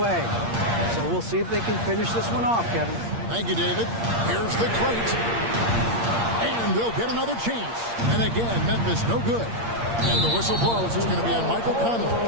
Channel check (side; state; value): left; late; 8.6 ms